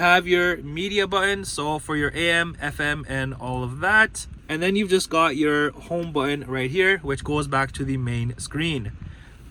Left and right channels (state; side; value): identical; both; correlation 1.00